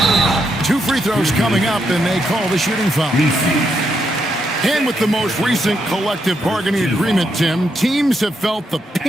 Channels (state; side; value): normal; both; correlation 0.80